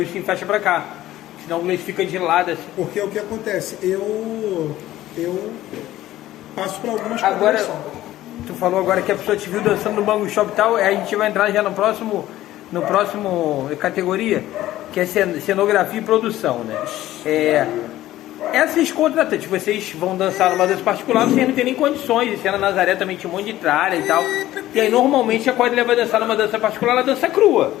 o Sim fecha pra cá. Senão o Gleice fica de lado assim. Porque o que acontece? Eu passo pra algumas agora, coisas. Tu falou agora que a pessoa te viu dançando no Bangu Shop e tal, aí a gente vai entrar já no próximo categoria, que é cenografia e produção, né? Essas contratantes, vocês vão dançar numa dança particular, vocês não tem nem condições, e se na Nazaré também tinha um monte de tralha e tal, e aí normalmente a quadrilha vai dançar numa dança particular, ela dança crua.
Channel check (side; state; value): right; quieter; 14.7 dB